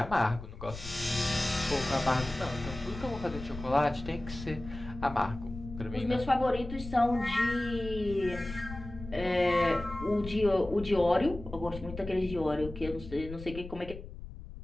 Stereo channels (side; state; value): left; noise; rumble, 12 dB below the sound